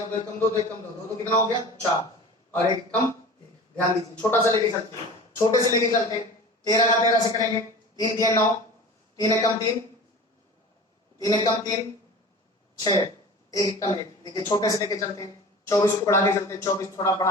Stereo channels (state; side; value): normal; both; correlation 0.38